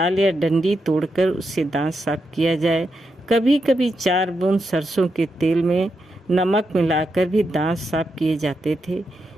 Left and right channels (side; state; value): both; normal; correlation 0.85